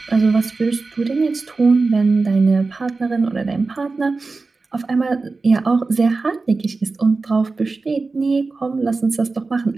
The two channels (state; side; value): quieter; left; 3.9 dB